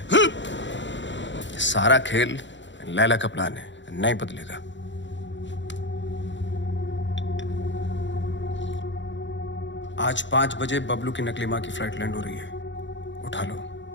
सारा खेल लैला का प्लान है, नहीं बदलेगा। आज 5 बजे बबलू की नकली माँ की फ्लाइट लैंड हो रही है, उठा लो।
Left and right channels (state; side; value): late; right; 0.54 ms